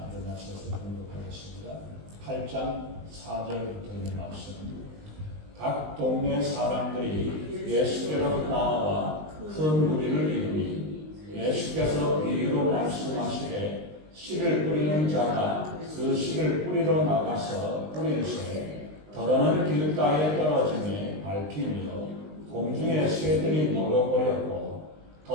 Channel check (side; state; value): left; late; 20 ms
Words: 공독하겠습니다. 8장 4절부터 있는 말씀. 각 동네 사람들이 예수께로 나와 큰 무리를 이루니 예수께서 비유로 말씀하시되 씨를 뿌리는 자가 그 씨를 뿌리러 나가서 뿌릴새 더러는 길가에 떨어지며 밟히며 공중에 새들이 먹어버렸고